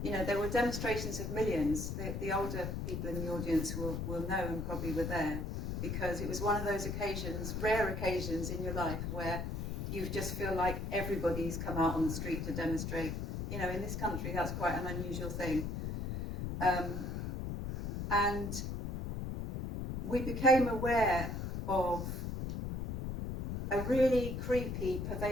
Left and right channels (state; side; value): noise; left; rumble, 4 dB below the sound